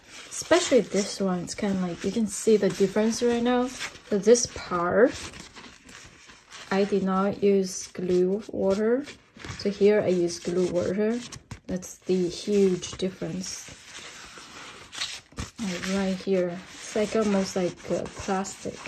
especially this one, it's kind of like, you can see the difference right now. So this part, I did not use glue water. So here I use glue water. That's the huge difference. Like right here, it's like almost like a plastic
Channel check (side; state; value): both; identical; correlation 1.00